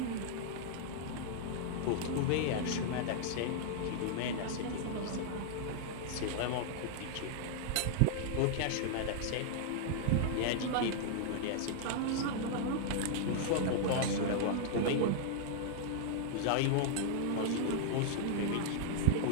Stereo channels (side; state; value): both; different; correlation -0.01